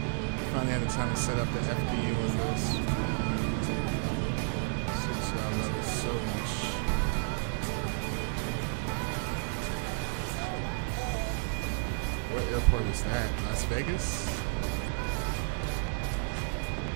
Finally had the time to set up the FDU of this. Since I love it so much. What airport is that? Las Vegas?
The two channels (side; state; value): left; silent; digital silence